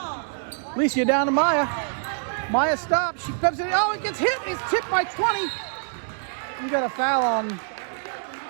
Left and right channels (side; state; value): left; silent; digital silence